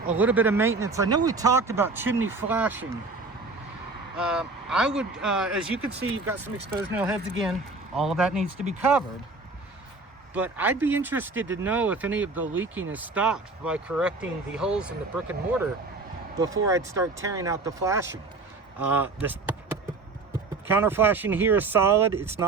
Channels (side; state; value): left; quieter; 3.7 dB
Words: a little bit of maintenance. I know we talked about chimney flashing. I would, as you can see, you've got some exposed nail heads again. All of that needs to be covered. But I'd be interested to know if any of the leaking is stopped by correcting the holes in the brick and mortar before I'd start tearing out the flashing. This counter flashing here is solid. It's